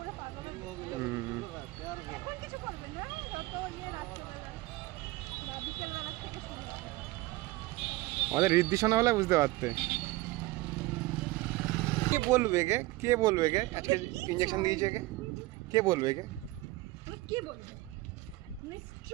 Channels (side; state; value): left; quieter; 19.7 dB